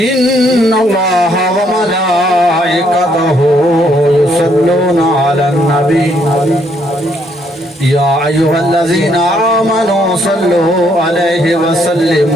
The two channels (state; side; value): normal; both; correlation 0.70